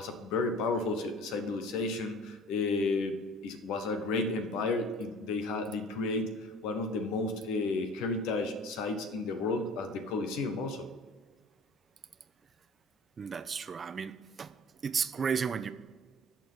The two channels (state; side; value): normal; both; correlation 0.44